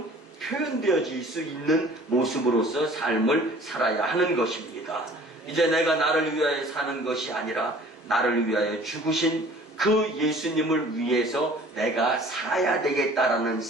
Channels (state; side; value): normal; both; correlation 0.49